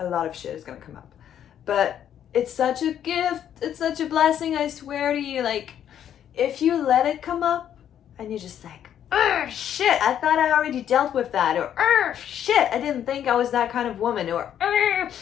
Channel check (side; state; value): right; quieter; 9.9 dB